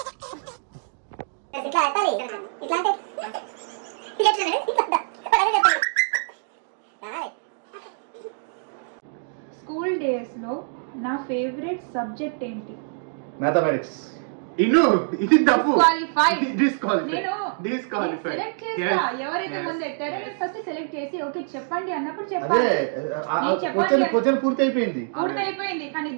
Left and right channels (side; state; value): left; silent; digital silence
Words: ఇట్లా అట్టాలి. ఇట్లా అంటే స్కూల్ డేస్ లో నా ఫేవరెట్ సబ్జెక్ట్ ఏంటి? మ్యాథమెటిక్స్. ఇది తప్పు. డిస్క్వాలిఫై. సెలెక్ట్ చేస్తా. ఎవరైతే ముందు ఎత్తారో నేను ఫస్ట్ సెలెక్ట్ చేసి ఓకే చెప్పండి అన్నప్పుడు చెప్పాలి. క్వశ్చన్ పూర్తి అయిపోయింది కానీ